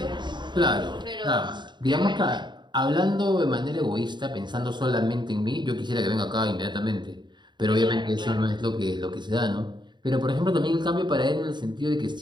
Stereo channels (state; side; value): late; left; 0.22 ms